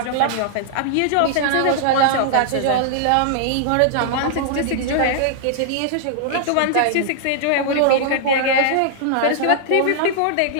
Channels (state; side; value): different; both; correlation -0.01